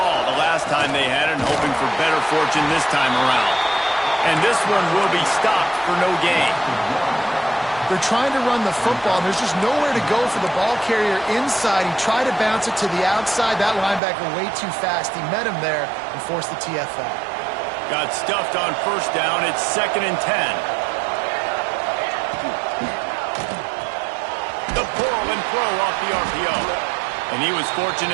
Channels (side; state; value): left; drops out; at 14.0 s